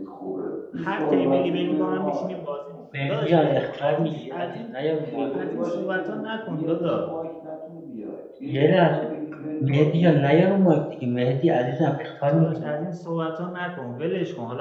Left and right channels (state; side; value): identical; both; correlation 1.00